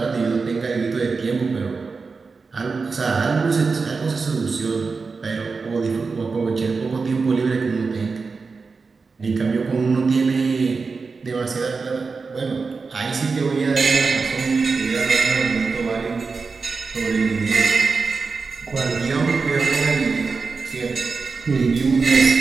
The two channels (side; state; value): left; quieter; 4.6 dB